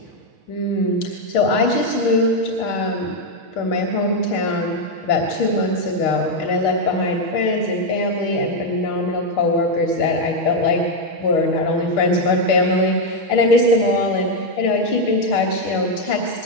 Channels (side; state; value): right; late; 6.3 ms